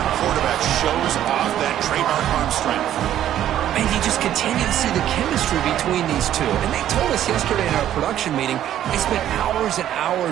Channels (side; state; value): left; quieter; 11.6 dB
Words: quarterback shows off that trademark arm strength. And you just continue to see the chemistry between these two. And they told us yesterday in our production meeting, they spent hours and